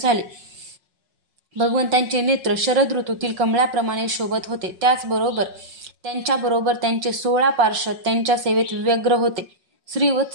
भगवंतांचे नेत्र शरद ऋतूतील कमळाप्रमाणे शोभत होते. त्याचबरोबर त्यांच्याबरोबर त्यांचे 16 पार्षद त्यांच्या सेवेत व्यग्र होते.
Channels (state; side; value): late; left; 5.4 ms